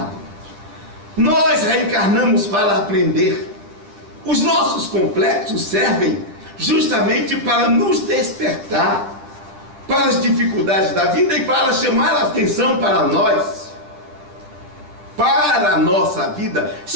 Nós reencarnamos para aprender. Os nossos complexos servem justamente para nos despertar para as dificuldades da vida e para chamar a atenção para nós, para a nossa vida.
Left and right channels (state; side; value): late; left; 10 ms